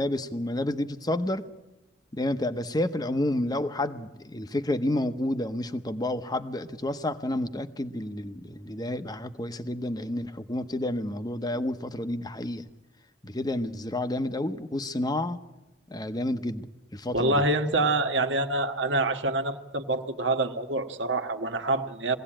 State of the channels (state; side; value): normal; both; correlation 0.35